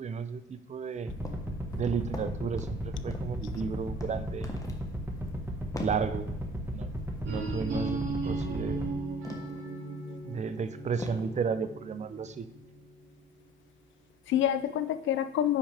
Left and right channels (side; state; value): both; normal; correlation 0.47